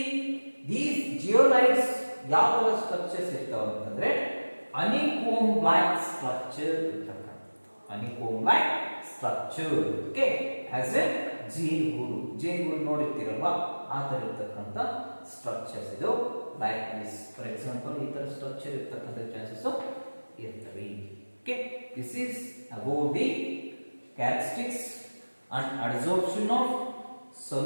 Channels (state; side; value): inverted; both; correlation -1.00